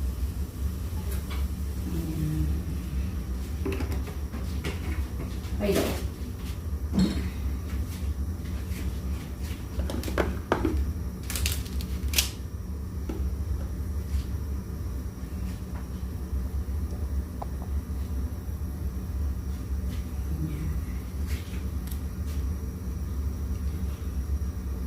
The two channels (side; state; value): both; identical; correlation 1.00